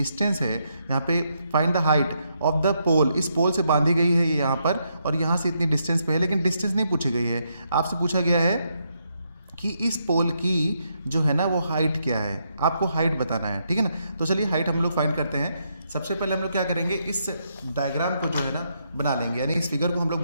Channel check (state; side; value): inverted; both; correlation -0.78